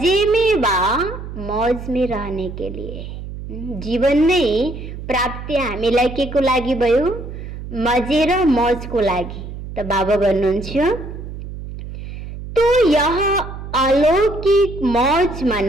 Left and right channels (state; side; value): noise; right; hum, 10 dB below the sound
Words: में वा मौज में रहने के लिए। जीवन नै प्राप्ति हामीलाई के को लागि भयो? मजे र मौजको लागि। त बाबा भन्नुहुन्छ तो यह अलौकिक मौज